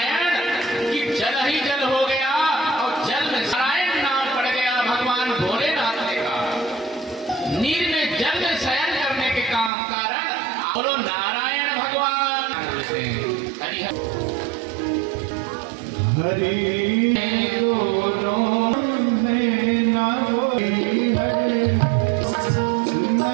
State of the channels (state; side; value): drops out; left; at 9.7 s